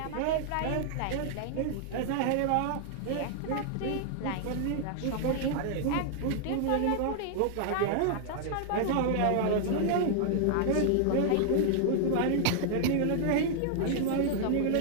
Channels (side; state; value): both; different; correlation -0.01